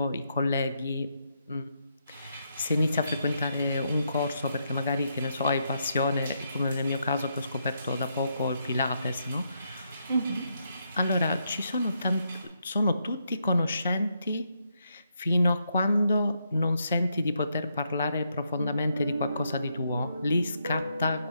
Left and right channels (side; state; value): both; inverted; correlation -0.78